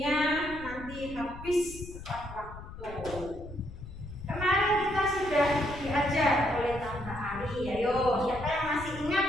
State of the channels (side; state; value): left; noise; rumble, 13 dB below the sound